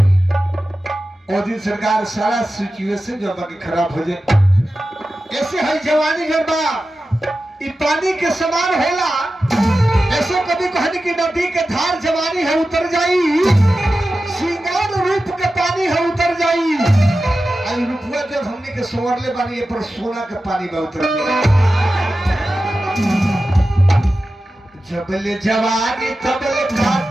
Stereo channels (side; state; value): both; normal; correlation 0.93